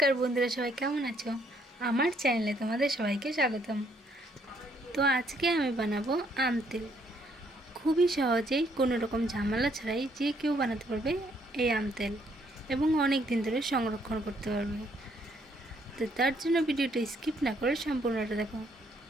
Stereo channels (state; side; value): normal; both; correlation 0.69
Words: বন্ধুরা, সবাই কেমন আছো? আমার চ্যানেলে তোমাদের সবাইকে স্বাগতম। তো আজকে আমি বানাবো আম তেল। খুবই সহজেই কোনো রকম ঝামেলা ছাড়াই যে কেউ বানাতে পারবে এই আম তেল, এবং অনেক দিন ধরে সংরক্ষণ করতে পারবে। তো তার জন্য ভিডিওটা স্কিপ না করে সম্পূর্ণটা দেখো।